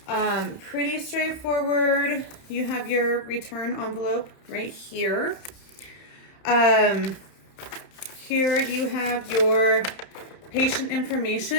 pretty straightforward. You have your return envelope right here. Here you have your patient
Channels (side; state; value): right; late; 31 ms